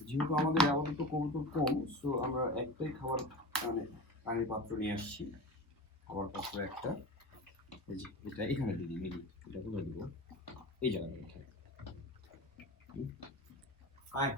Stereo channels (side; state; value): both; normal; correlation 0.31